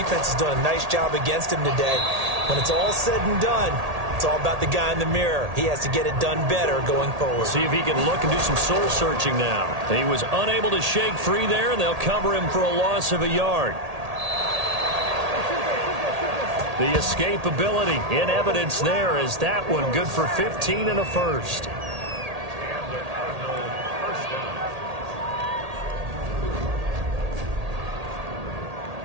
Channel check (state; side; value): late; left; 1.8 ms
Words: is doing a nice job against him today. When it's all said and done, it's all about the guy in the mirror. He has to get it done better going forward. See if he can look and do some soul searching now. He was unable to shake free there, and they'll cover him for a loss of a yard. The escapability in evidence there as that one good for 15 and a first.